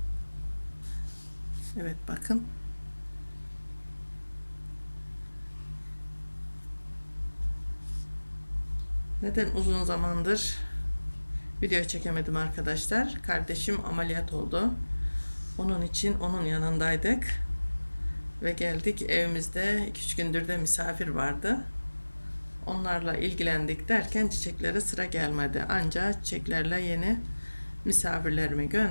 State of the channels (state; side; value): inverted; both; correlation -1.00